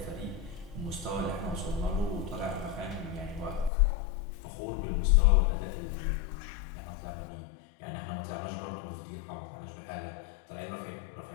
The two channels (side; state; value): right; drops out; at 3.7 s